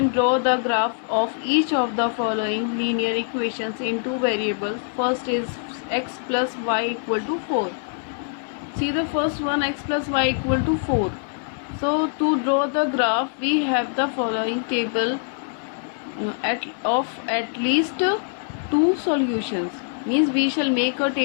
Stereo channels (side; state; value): right; silent; digital silence